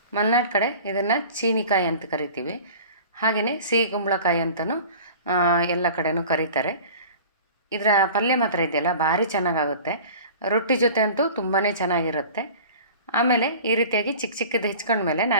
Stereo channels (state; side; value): inverted; both; correlation -0.41